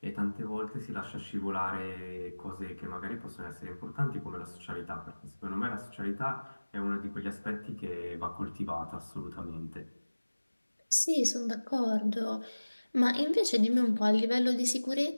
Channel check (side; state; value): both; inverted; correlation -1.00